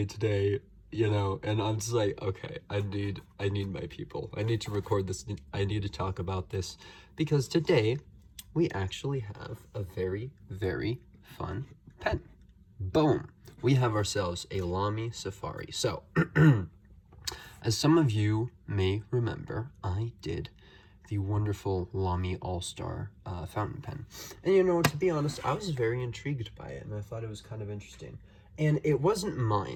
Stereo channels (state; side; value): identical; both; correlation 1.00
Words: today, and I'm just like, okay, I need my people. I need to record this. I need to talk about this because today we actually have a very, very fun pen. Boom! We have ourselves a Lamy Safari. So, as some of you may remember, I did the wonderful Lamy All-Star fountain pen. And to be honest, I was very intrigued by it, and I thought it was kind of interesting. And it wasn't